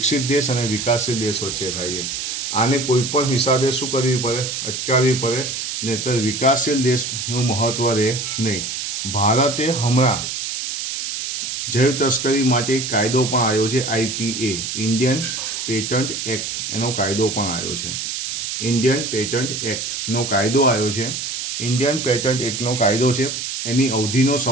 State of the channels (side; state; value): right; noise; hiss, 4 dB below the sound